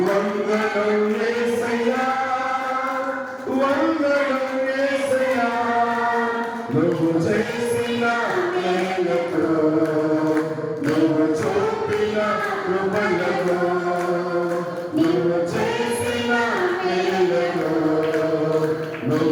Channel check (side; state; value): both; identical; correlation 1.00